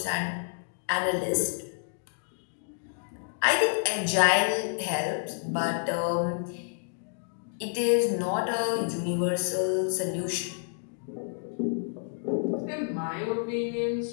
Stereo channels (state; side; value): silent; right; digital silence